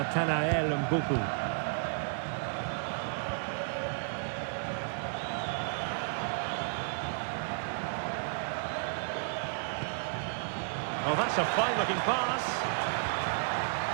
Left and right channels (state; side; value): silent; left; digital silence